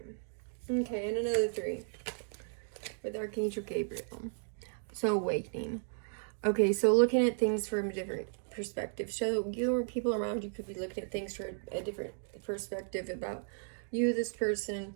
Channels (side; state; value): left; silent; digital silence